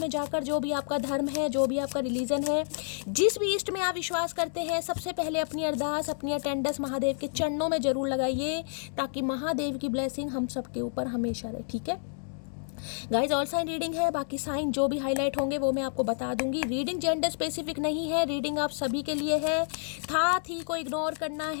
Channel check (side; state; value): right; silent; digital silence